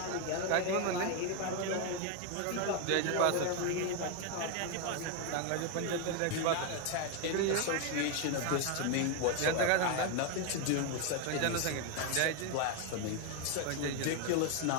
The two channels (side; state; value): both; different; correlation 0.01